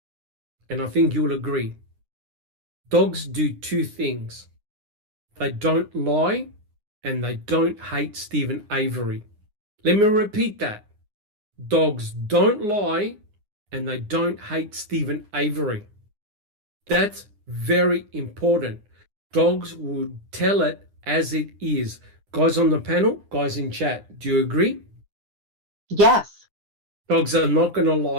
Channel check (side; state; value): left; late; 9.7 ms